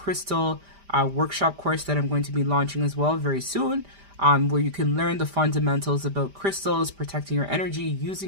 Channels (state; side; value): late; left; 5.0 ms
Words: workshop course that I'm going to be launching as well very soon, where you can learn the fundamentals about crystals, protecting your energy,